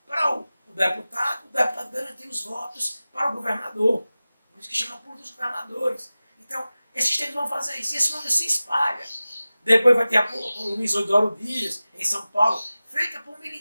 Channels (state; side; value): inverted; both; correlation -0.97